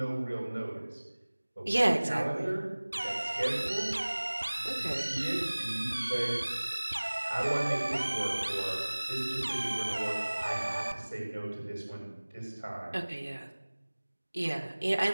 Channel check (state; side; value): inverted; both; correlation -1.00